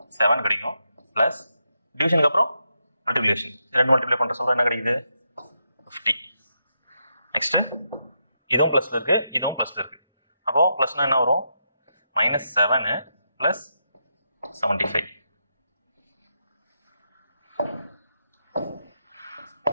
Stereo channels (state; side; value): inverted; both; correlation -0.83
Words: 7 கிடைக்கும், ப்ளஸ் டிவிஷனுக்கு அப்புறம் மல்டிப்ளிகேஷன், ரெண்டு மல்டிப்ளை பண்ணுற சொல்ல என்ன கிடைக்குது? 50. நெக்ஸ்ட்டு இதுவும் ப்ளஸில் இருக்கு, இதுவும் ப்ளஸில் இருக்கு. அப்போ ப்ளஸ்னா என்ன வரும்? -7 ப்ளஸ் 75.